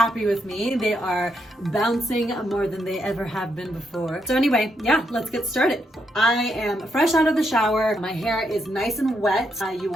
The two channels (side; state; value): both; normal; correlation 0.79